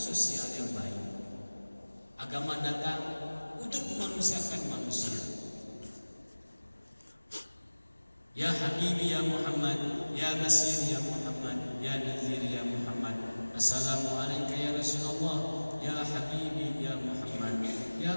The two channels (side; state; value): both; inverted; correlation -1.00